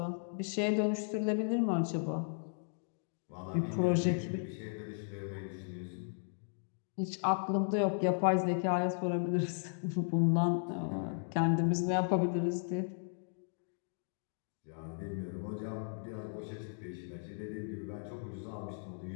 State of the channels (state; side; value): silent; right; digital silence